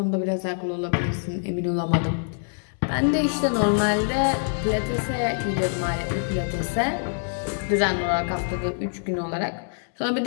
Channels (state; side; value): silent; right; digital silence